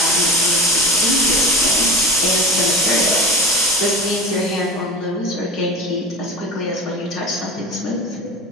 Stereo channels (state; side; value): normal; both; correlation 0.31